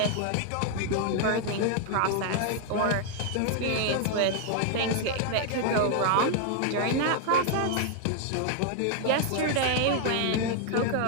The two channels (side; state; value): both; different; correlation 0.00